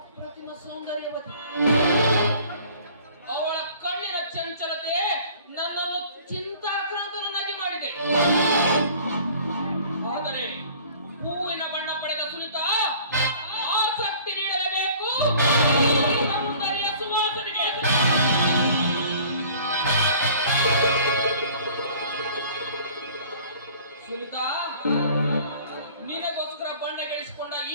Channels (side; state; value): both; inverted; correlation -0.50